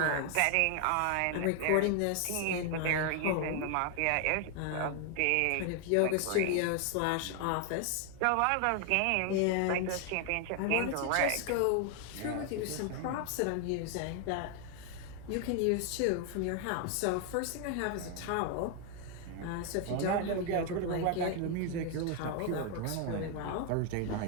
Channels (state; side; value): different; both; correlation 0.00